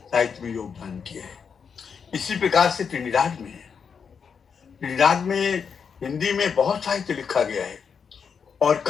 साहित्य में योगदान किया है। इसी प्रकार से ट्रिनिडाद में है। ट्रिनिडाद में हिंदी में बहुत साहित्य लिखा गया है, और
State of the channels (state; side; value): quieter; right; 6.4 dB